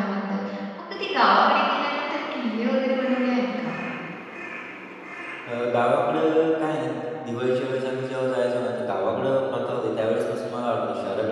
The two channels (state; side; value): identical; both; correlation 1.00